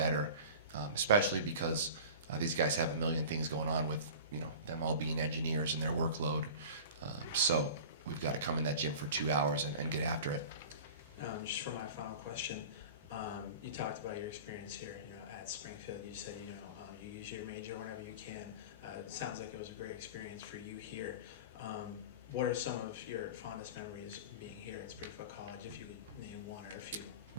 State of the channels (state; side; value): inverted; both; correlation -0.37